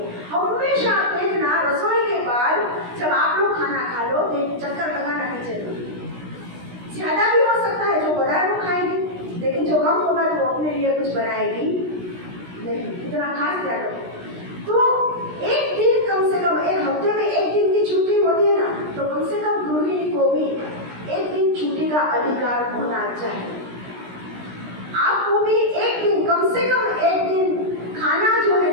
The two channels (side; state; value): left; late; 16 ms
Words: हमेशा आप देखना, रसोई के बाद जब आप लोग खाना खा लो, एक चक्कर लगाना किचन में। ज्यादा भी हो सकता है, जो बड़ा है वो खाएंगे, लेकिन जो कम होगा वो अपने लिए कुछ बनाएगी नहीं, इतना खास ध्यान रखो। तो एक दिन कम से कम, एक हफ्ते में एक दिन की छुट्टी होती है ना, तो कम से कम गृहिणी को भी एक दिन छुट्टी का अधिकार होना चाहिए। आपको भी एक दिन, कम से कम एक दिन खाना जो है